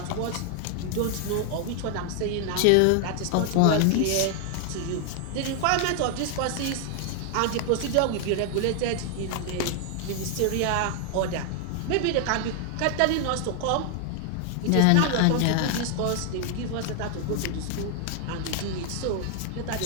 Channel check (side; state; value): both; different; correlation 0.00